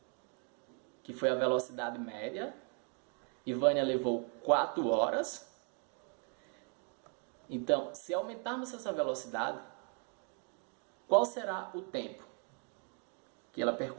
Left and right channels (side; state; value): left; quieter; 39.7 dB